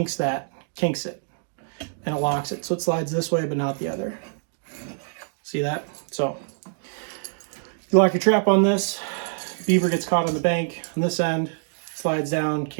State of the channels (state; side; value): silent; left; digital silence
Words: it, and it locks it. So it slides this way, but not the other. See that? So you lock your trap on this, beaver gets caught on the bank on this end, slides down,